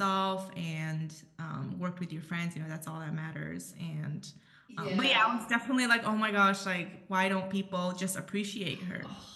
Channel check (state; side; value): identical; both; correlation 1.00